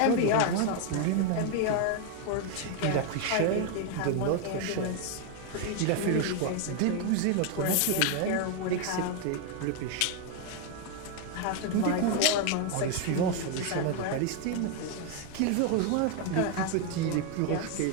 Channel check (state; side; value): different; both; correlation 0.01